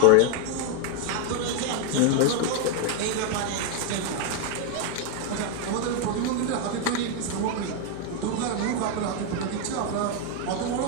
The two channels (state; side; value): different; both; correlation 0.01